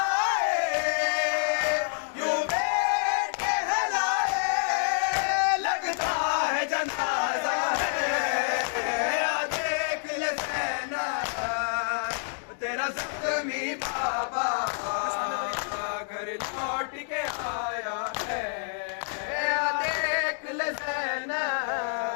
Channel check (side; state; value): right; silent; digital silence